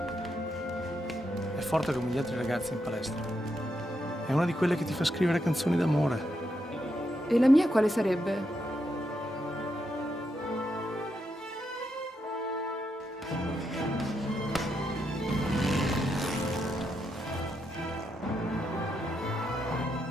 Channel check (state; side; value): normal; both; correlation 0.82